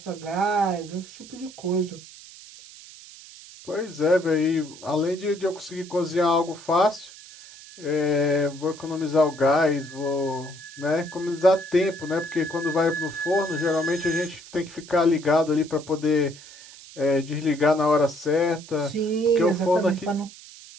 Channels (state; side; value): noise; right; hiss, 18 dB below the sound